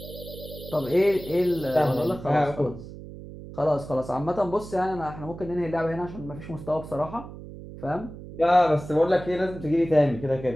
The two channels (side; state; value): right; noise; hum, 13 dB below the sound